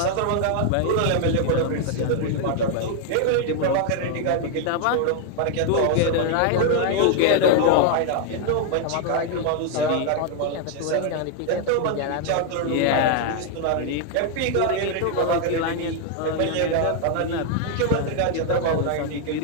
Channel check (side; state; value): both; different; correlation 0.00